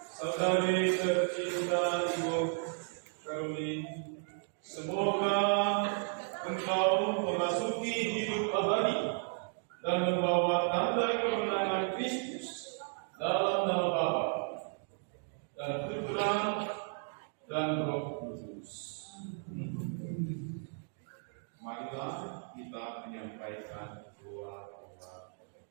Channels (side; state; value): left; silent; 55 dB below the other